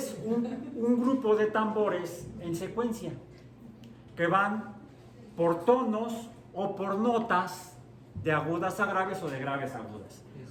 un grupo de tambores en secuencia que van por tonos o por notas de agudas a graves o de graves a agudas.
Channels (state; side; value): identical; both; correlation 1.00